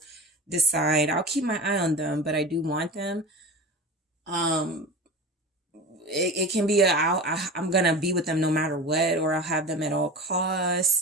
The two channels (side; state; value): both; normal; correlation 0.31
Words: decide, I'll keep my eye on them, but I do want them. It can be I'm going to be with them no matter what, or I'll have them at all